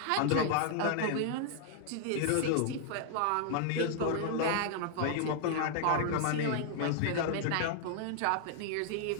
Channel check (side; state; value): both; different; correlation 0.00